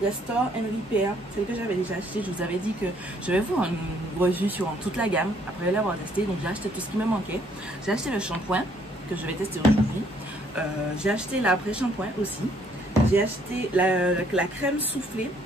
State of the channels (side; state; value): both; normal; correlation 0.66